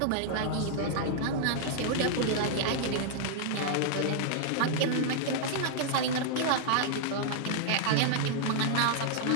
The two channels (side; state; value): both; different; correlation -0.01